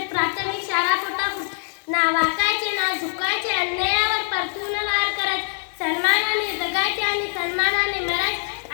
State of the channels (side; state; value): right; silent; 62 dB below the other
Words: प्राथमिक शाळा पोटापूर ना वाकायचे ना झुकायचे अन्यायावर परतून वार करायचे सन्मानाने जगायचे आणि सन्मानाने मरायचे